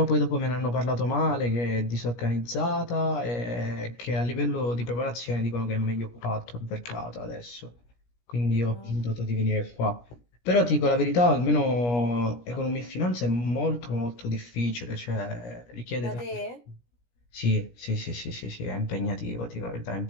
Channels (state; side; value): late; right; 17 ms